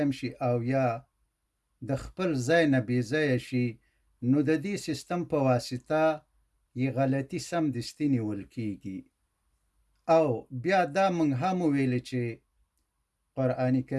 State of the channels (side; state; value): both; identical; correlation 1.00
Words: شي او یا د خپل ځای نه بې ځایه شي، نو د دې سیستم په واسطه یې غلطي سمدستي نیول کیږي. او بیا دا مونږ هم ویل چې قرآن